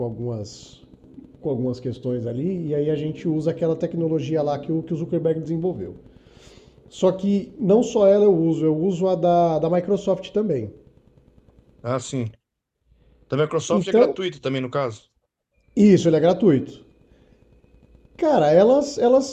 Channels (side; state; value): both; identical; correlation 1.00